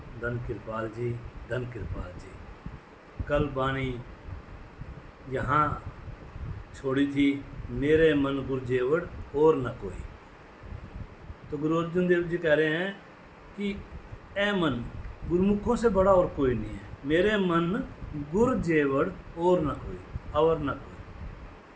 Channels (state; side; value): identical; both; correlation 1.00